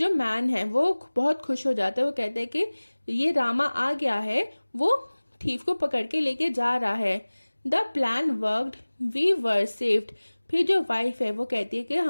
मैन है वो बहुत खुश हो जाता है, वो कहते हैं कि ये रामा आ गया है, वो थीफ को पकड़ के लेके जा रहा है। The plan worked we were saved. फिर जो वाइफ है वो कहती है कि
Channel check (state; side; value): inverted; both; correlation -1.00